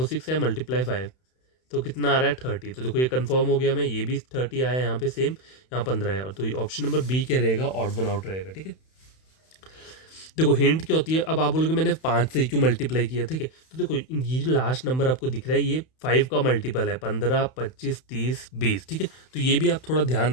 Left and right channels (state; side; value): late; right; 31 ms